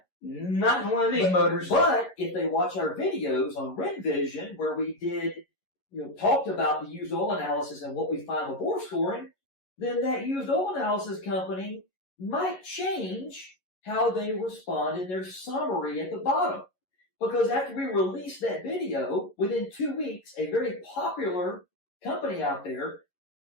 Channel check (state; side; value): late; right; 11 ms